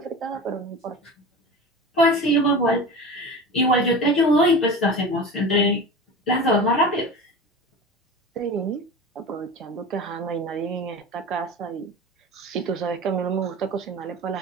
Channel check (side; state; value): both; normal; correlation 0.32